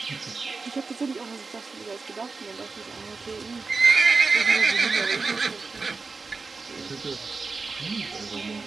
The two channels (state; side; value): quieter; left; 4.2 dB